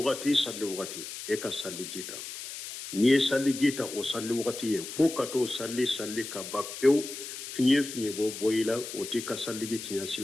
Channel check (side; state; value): left; noise; hiss, 9 dB below the sound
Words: e ka salli jita ni e salli jita o salli wagati e fo ka to salli ka ba pew finye bo boyila o ti ka salli ji tinya